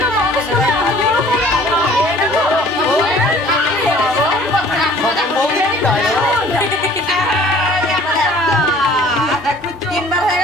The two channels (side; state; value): both; normal; correlation 0.52